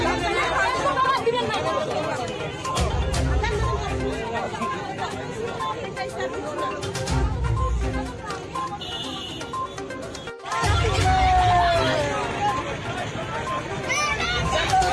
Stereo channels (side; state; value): both; identical; correlation 1.00